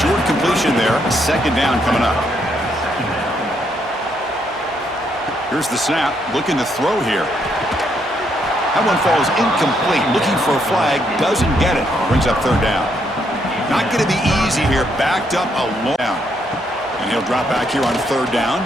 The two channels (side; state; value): both; normal; correlation 0.74